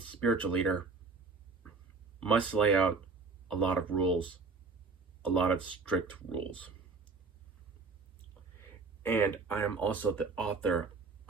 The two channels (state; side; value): quieter; left; 4.3 dB